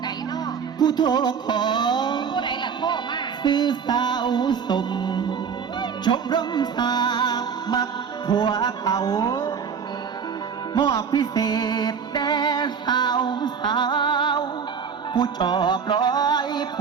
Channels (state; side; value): quieter; left; 6.6 dB